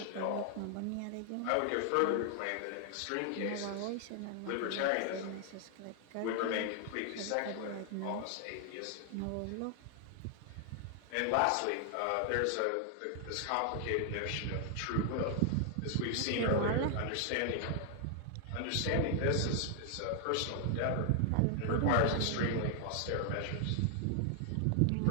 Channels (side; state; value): both; different; correlation 0.00